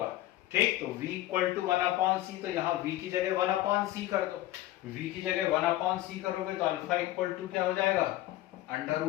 ठीक, तो V equal to 1 upon C, तो यहाँ V की जगह 1 अपॉन C कर दो। V की जगह 1 अपॉन C करोगे तो अल्फा इक्वल टू क्या हो जाएगा? Under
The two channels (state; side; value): quieter; right; 15.4 dB